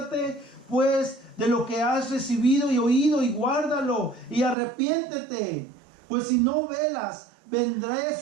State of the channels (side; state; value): left; drops out; at 4.5 s